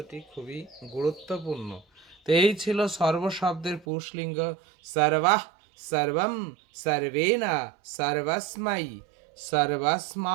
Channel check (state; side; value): drops out; left; at 3.9 s